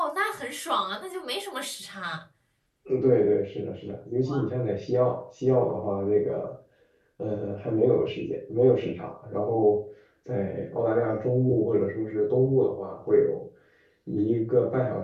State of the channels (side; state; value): both; identical; correlation 1.00